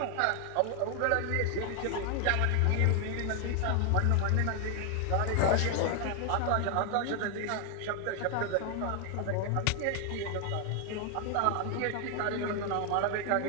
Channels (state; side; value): different; both; correlation 0.00